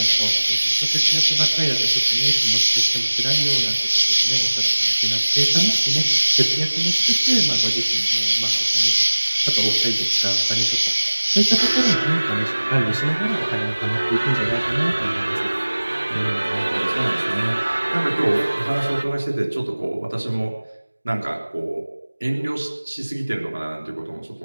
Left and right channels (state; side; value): inverted; both; correlation -1.00